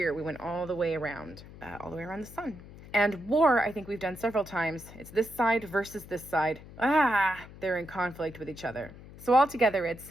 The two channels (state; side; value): noise; left; hum, 17 dB below the sound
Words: We went all the way around the sun. And war, I think we've done several times. It's this side versus this side. They're in conflict with each other. So altogether,